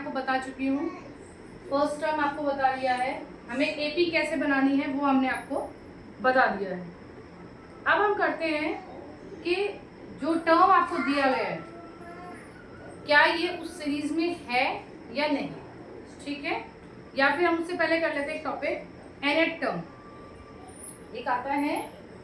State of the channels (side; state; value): both; identical; correlation 1.00